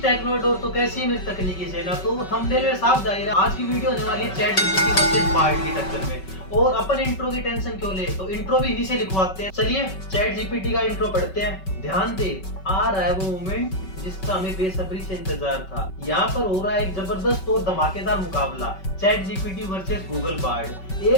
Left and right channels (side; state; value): right; late; 5.3 ms